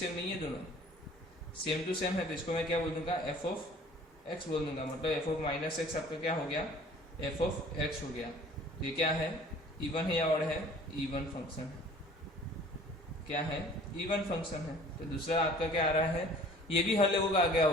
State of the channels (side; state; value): both; normal; correlation 0.50